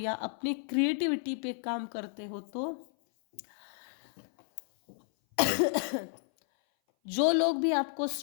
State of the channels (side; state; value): right; silent; 57 dB below the other